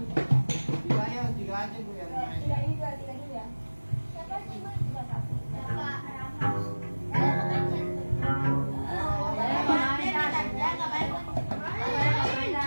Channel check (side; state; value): both; inverted; correlation -1.00